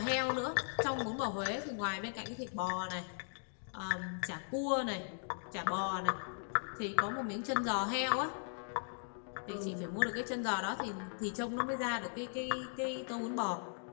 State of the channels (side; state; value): right; silent; digital silence